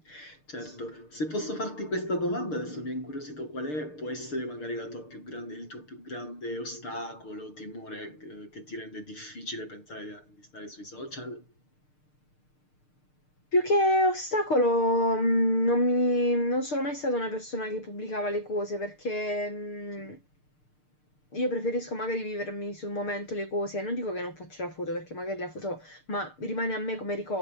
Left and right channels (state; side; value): late; right; 6.6 ms